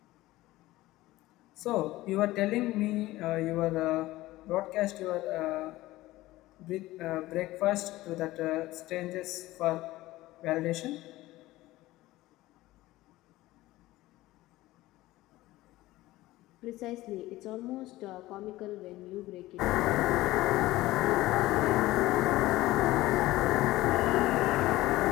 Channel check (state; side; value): quieter; right; 17.5 dB